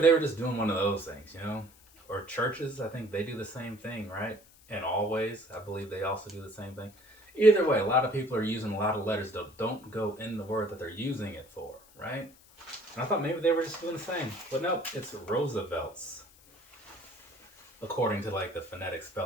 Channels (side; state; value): left; noise; hiss, 26 dB below the sound